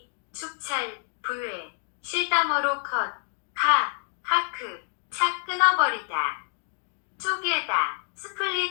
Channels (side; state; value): right; silent; 60 dB below the other